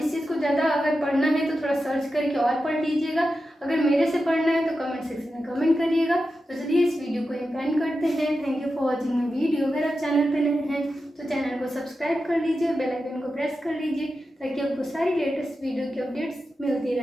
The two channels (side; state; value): both; normal; correlation 0.91